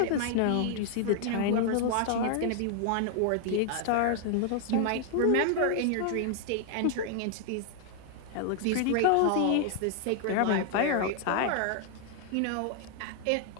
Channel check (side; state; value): both; different; correlation 0.00